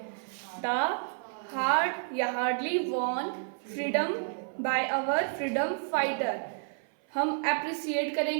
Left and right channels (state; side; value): silent; left; 57 dB below the other